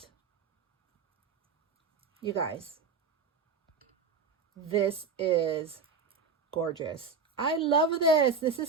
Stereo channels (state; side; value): quieter; left; 5.0 dB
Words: You guys, this is gorgeous. I love this. This